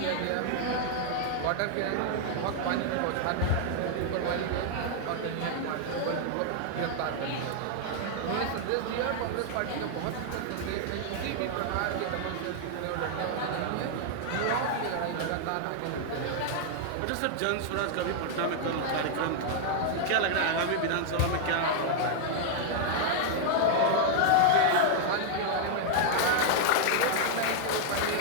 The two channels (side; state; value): both; different; correlation -0.01